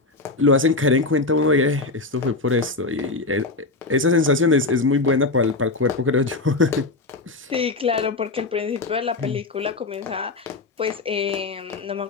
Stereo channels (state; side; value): quieter; right; 3.4 dB